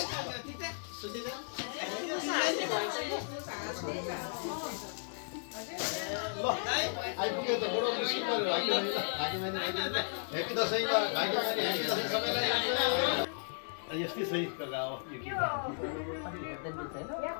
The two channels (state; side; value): silent; right; 55 dB below the other